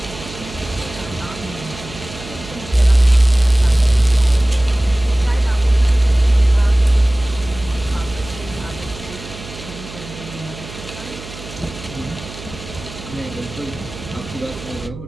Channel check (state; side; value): noise; right; hum, 14 dB below the sound